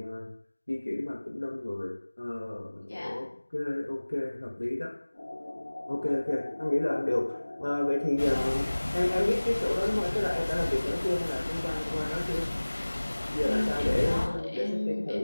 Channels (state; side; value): inverted; both; correlation -1.00